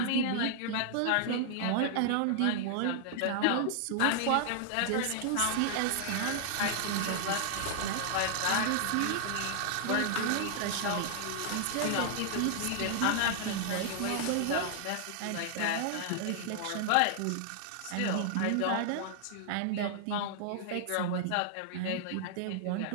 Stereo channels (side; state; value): both; different; correlation -0.01